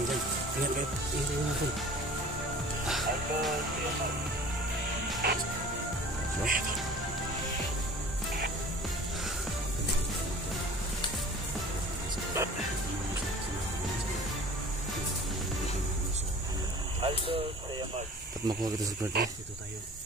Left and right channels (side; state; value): both; normal; correlation 0.44